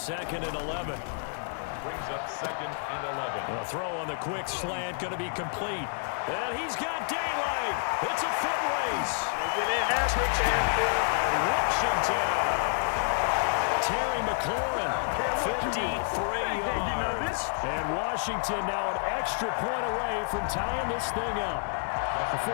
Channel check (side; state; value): right; silent; digital silence